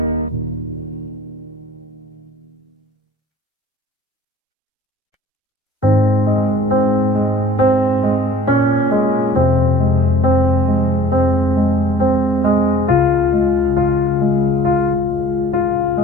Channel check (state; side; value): normal; both; correlation 0.47